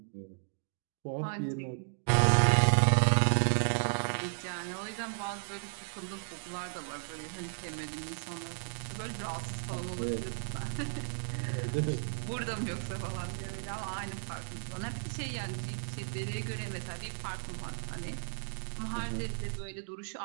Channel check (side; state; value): left; silent; digital silence